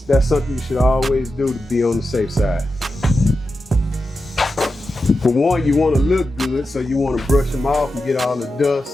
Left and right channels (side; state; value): both; normal; correlation 0.90